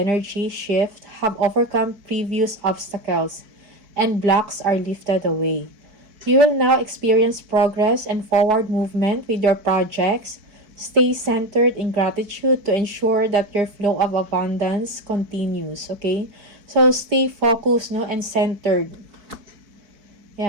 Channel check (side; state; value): left; late; 4.6 ms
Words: shift have overcome previous obstacles, and blocks are lifted away. You will now experience progress and forward movement with your projects. Stay centered in gratitude to ensure that your flow of abundance continues, okay? So, stay focused, no, and centered.